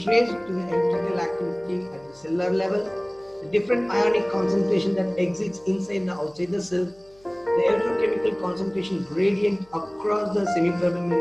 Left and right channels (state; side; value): noise; left; hum, 29 dB below the sound